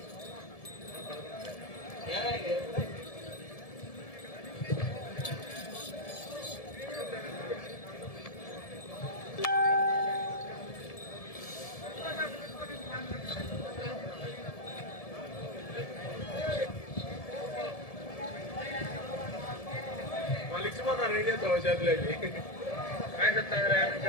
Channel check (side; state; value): right; late; 1.7 ms